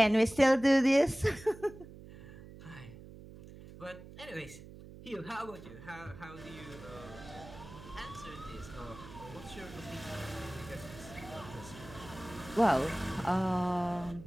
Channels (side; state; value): right; noise; hum, 16 dB below the sound